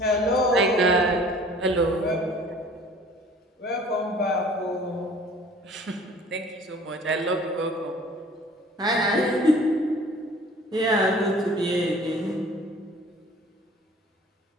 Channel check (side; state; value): both; normal; correlation 0.50